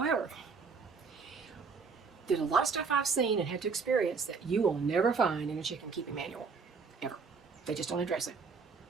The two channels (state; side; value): quieter; left; 5.1 dB